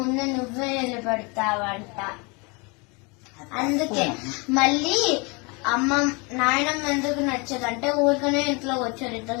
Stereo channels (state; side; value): quieter; right; 29.4 dB